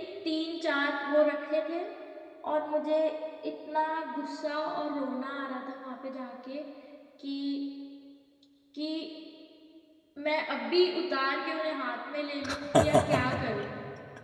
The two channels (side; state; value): both; identical; correlation 1.00